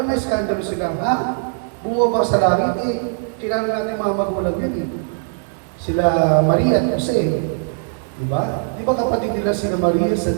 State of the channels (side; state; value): left; silent; 66 dB below the other